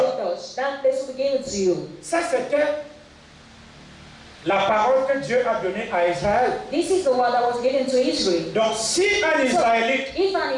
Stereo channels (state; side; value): identical; both; correlation 1.00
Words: touch, that place will be given to you. Ça, c'était la parole que Dieu a donnée à Israël. This is the word that was given to Israel. Donc, si un Israélite If